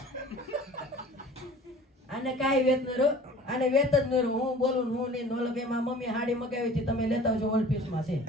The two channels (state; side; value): normal; both; correlation 0.45